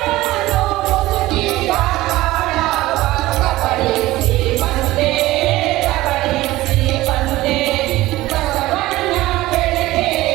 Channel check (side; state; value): left; quieter; 17.5 dB